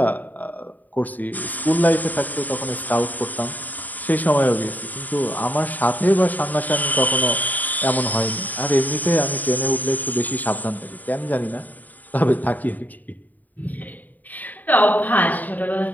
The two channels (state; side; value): late; right; 0.082 ms